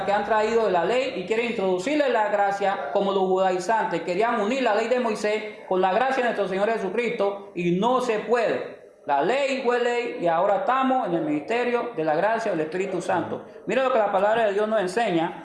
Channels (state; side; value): identical; both; correlation 1.00